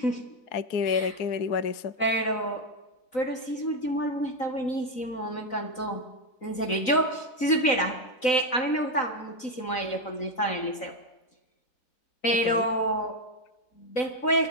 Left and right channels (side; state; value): right; late; 3.9 ms